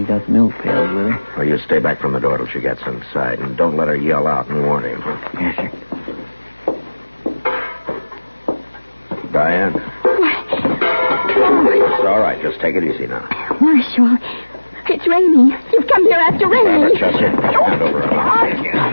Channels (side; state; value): both; inverted; correlation -1.00